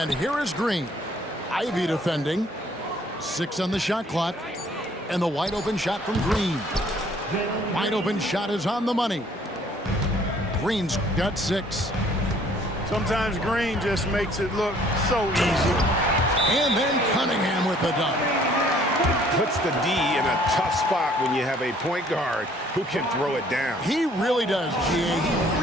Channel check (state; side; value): normal; both; correlation 0.59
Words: here is Green. Ivy defending. 6 on the shot clock. And the wide open shot from Green. Wide open shot is on the money. Green's got 6. Sometimes Green just makes it look so easy. And then Cunningham with the dunk. Puts the D in a tough spot when you have a point guard who can throw it down. He really does, G.A.